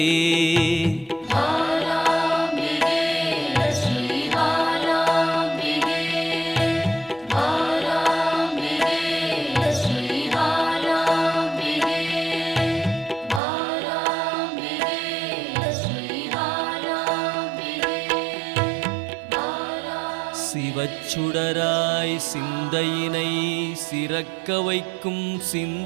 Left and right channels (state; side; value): drops out; left; at 13.4 s